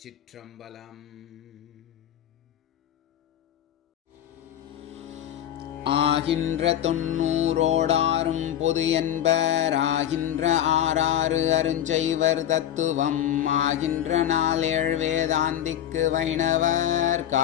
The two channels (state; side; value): quieter; right; 11.0 dB